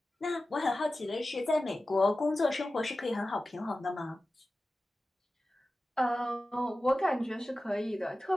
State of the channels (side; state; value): both; normal; correlation 0.95